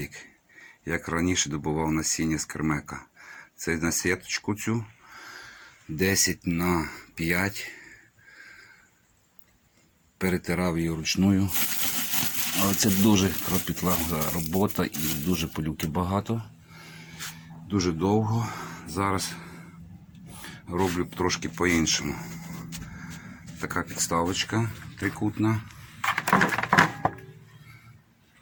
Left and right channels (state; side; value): identical; both; correlation 1.00